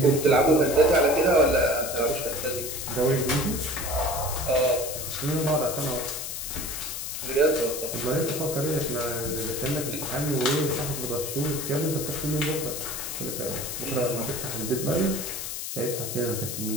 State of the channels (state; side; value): noise; left; hiss, 5 dB below the sound